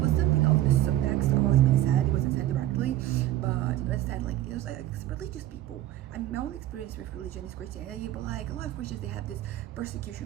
something of the subtext of what was being said. It wasn't said directly, but instead, like it was like religious people. I mean, my own experience with religion is Christianity, but like a lot of Christians, they have this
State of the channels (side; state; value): left; quieter; 13.9 dB